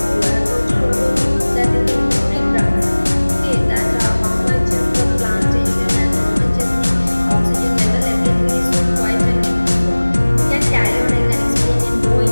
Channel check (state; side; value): inverted; both; correlation -1.00